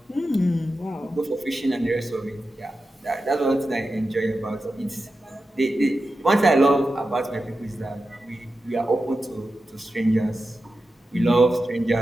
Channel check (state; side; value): normal; both; correlation 0.92